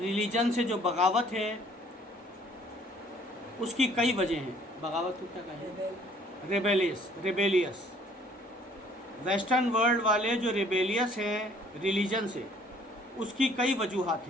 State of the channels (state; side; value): normal; both; correlation 0.58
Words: سے جو بغاوت ہے اس کی کئی وجہ ہیں۔ بغاوت کو کیا کہیں؟ ریبیلیس۔ ویسٹرن ورلڈ والے جو ریبیلیس ہیں ریلیجن سے، اس کی کئی وجوہات